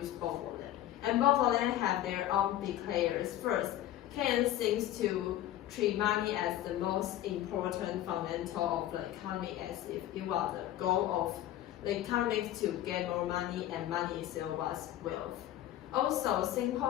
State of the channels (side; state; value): right; quieter; 13.1 dB